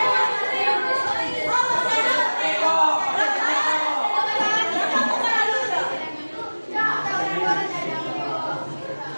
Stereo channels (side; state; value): both; inverted; correlation -1.00